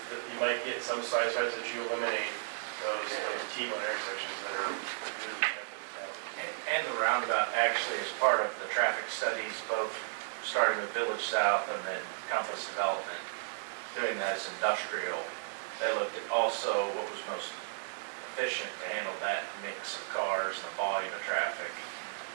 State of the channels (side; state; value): left; silent; digital silence